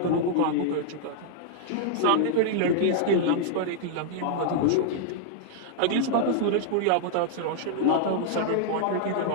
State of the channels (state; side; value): different; both; correlation -0.01